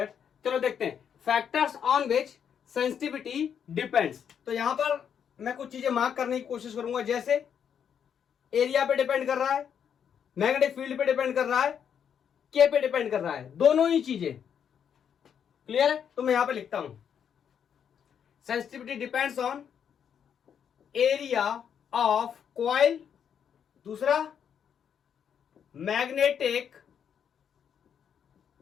चलो देखते हैं, factors on which sensitivity depends. तो यहां पर मैं कुछ चीजें मार्क करने की कोशिश करूंगा, जैसे एरिया पे डिपेंड कर रहा है, मैग्नेटिक फील्ड पे डिपेंड कर रहा है, के पे डिपेंड कर रहा है, दोनों ही चीजें। क्लियर है? तो मैं यहां पे लिखता हूं sensitivity depends on area of coil, दूसरा मैग्नेटिक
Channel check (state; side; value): quieter; right; 8.1 dB